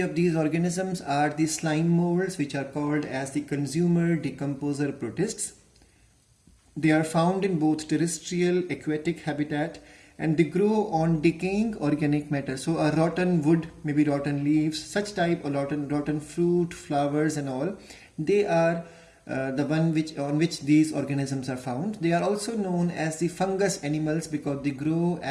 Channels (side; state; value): both; identical; correlation 1.00